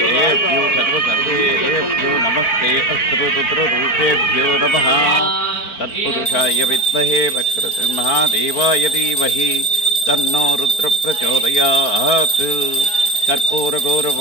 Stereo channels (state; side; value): late; right; 4.5 ms